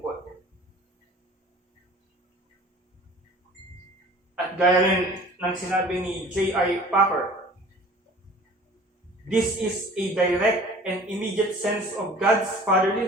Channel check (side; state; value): both; normal; correlation 0.46